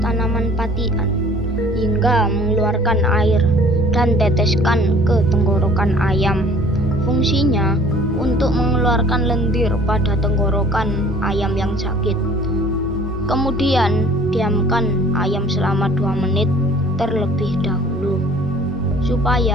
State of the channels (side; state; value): both; normal; correlation 0.52